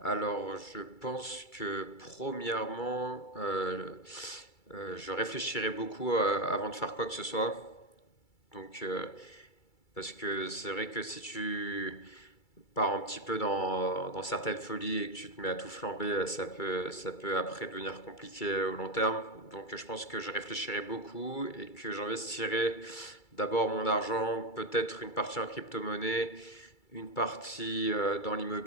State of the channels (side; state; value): right; late; 2.3 ms